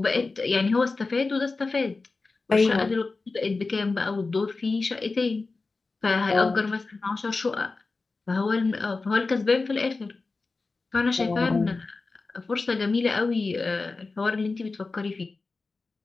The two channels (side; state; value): right; quieter; 3.8 dB